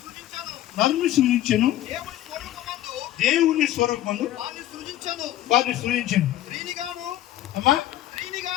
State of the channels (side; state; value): right; quieter; 13.7 dB